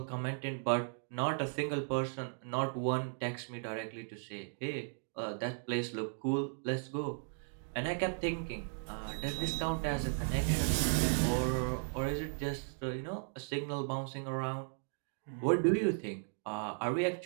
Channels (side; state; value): left; silent; digital silence